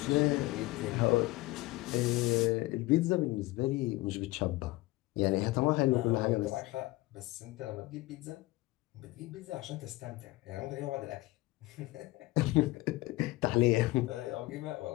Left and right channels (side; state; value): right; quieter; 19.7 dB